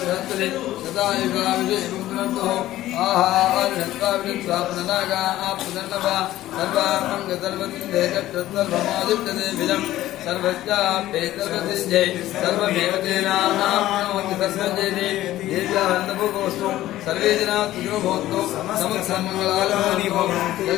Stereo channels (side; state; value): right; quieter; 14.7 dB